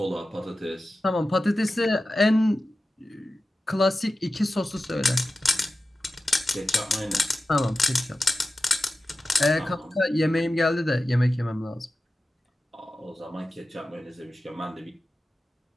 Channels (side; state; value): both; normal; correlation 0.94